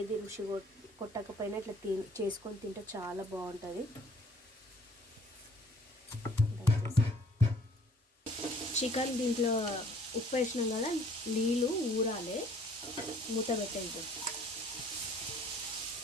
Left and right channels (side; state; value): both; normal; correlation 0.56